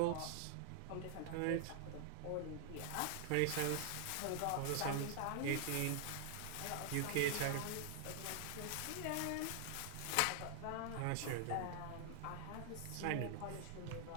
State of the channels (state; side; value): different; both; correlation 0.00